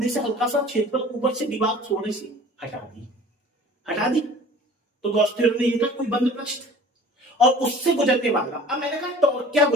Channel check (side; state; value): both; normal; correlation 0.45